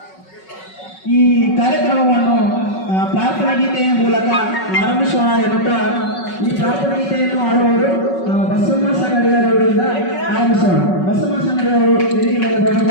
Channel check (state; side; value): late; right; 5.4 ms